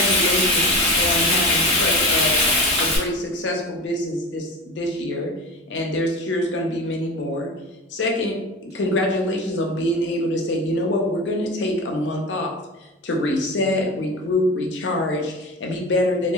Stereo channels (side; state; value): both; normal; correlation 0.29